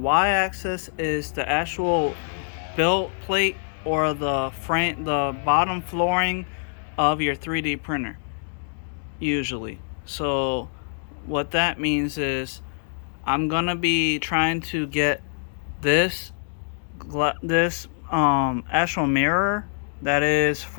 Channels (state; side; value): silent; right; digital silence